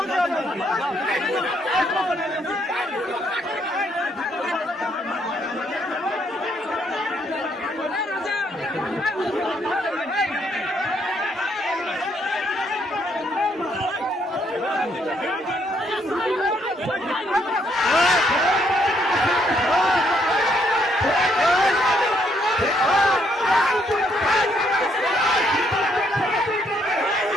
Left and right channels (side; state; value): both; normal; correlation 0.71